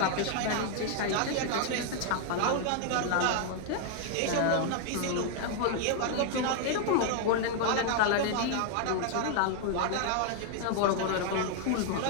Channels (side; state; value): both; different; correlation 0.00